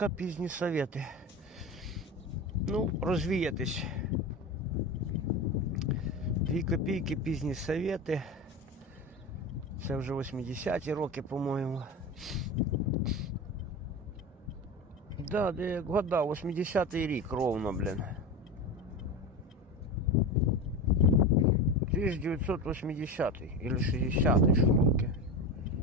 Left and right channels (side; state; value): both; normal; correlation 0.25